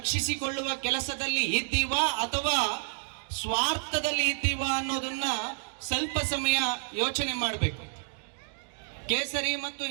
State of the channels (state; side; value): silent; left; digital silence